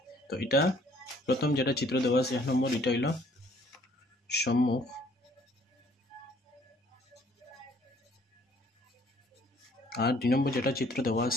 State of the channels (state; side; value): normal; both; correlation 0.60